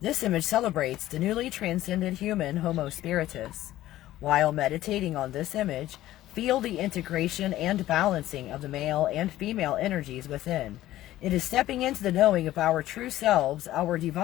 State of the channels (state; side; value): quieter; right; 14.7 dB